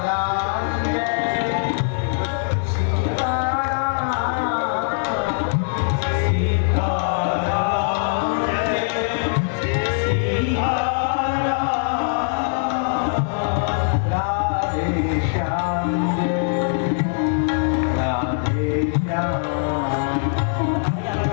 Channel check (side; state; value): right; silent; digital silence